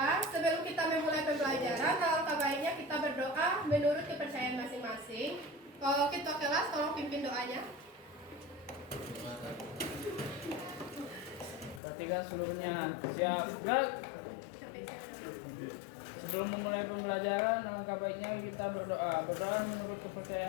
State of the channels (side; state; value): right; drops out; at 11.8 s